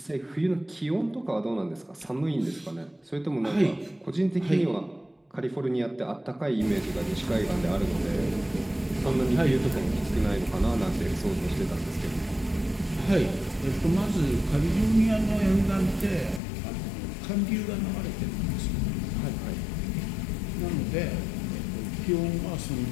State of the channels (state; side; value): drops out; right; at 16.4 s